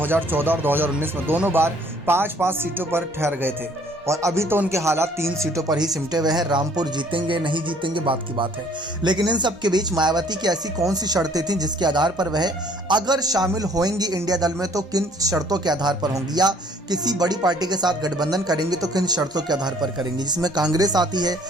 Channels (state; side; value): normal; both; correlation 0.59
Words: और 2019 में दोनों बार 5-5 सीटों पर ठहर गए थे और अभी तो उनके हालात 3 सीटों पर ही सिमटे हुए हैं। रामपुर जीतेंगे नहीं जीतेंगे बात की बात है, लेकिन इन सब के बीच मायावती की ऐसी कौन सी शर्तें थीं जिसके आधार पर वह अगर शामिल होंगी इंडिया दल में तो किन शर्तों के आधार पर होंगी, या किसी बड़ी पार्टी के साथ गठबंधन करेंगे तो किन शर्तों के आधार पर करेंगे, जिसमें कांग्रेस आती है,